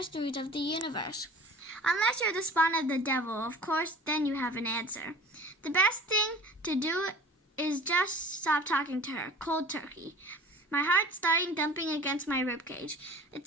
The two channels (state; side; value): normal; both; correlation 0.43